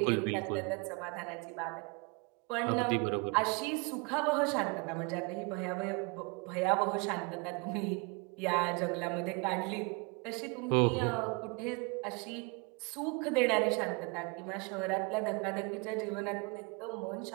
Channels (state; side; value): quieter; left; 31.1 dB